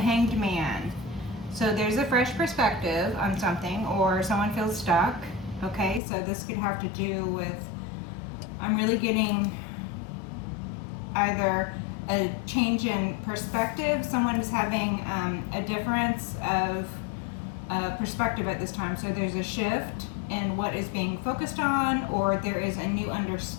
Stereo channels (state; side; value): drops out; right; at 6.0 s